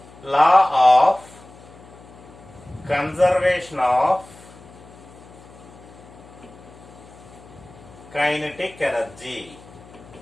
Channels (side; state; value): left; noise; hum, 21 dB below the sound